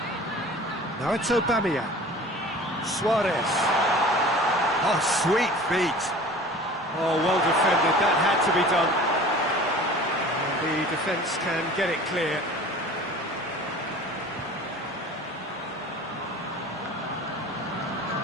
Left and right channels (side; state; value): both; normal; correlation 0.42